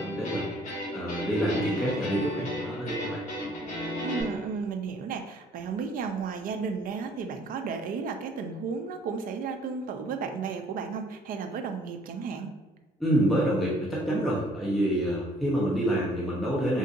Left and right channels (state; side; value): normal; both; correlation 0.59